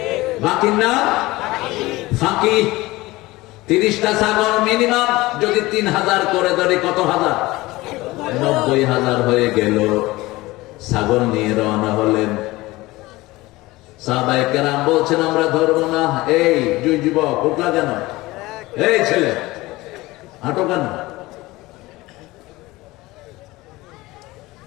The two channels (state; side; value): quieter; right; 19.9 dB